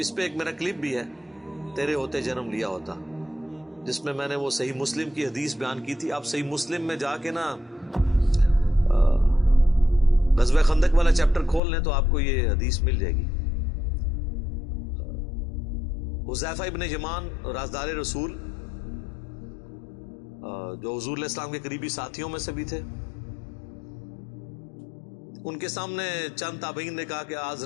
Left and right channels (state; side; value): drops out; right; at 11.6 s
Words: پہ ایک میرا کلپ بھی ہے تیرے ہوتے جنم لیا ہوتا, جس میں نے وہ صحیح مسلم کی حدیث بیان کی تھی. آپ صحیح مسلم میں جا کے نا غزوہ خندق والا چیپٹر کھول لیں تو آپ کو یہ حدیث مل جائے گی. حذیفہ ابن یمان رازدار رسول, جو حضور علیہ السلام کے قریبی ساتھیوں میں سے بھی تھے, ان کے سامنے چند تابعین نے کہا کہ